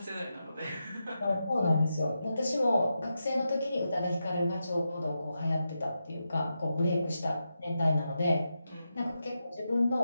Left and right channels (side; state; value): both; inverted; correlation -0.88